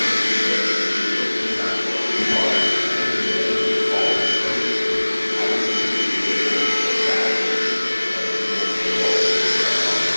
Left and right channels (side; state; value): both; inverted; correlation -1.00